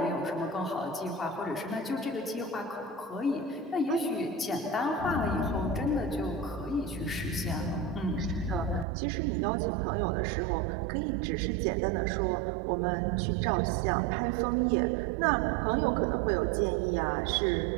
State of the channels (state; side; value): drops out; left; at 8.8 s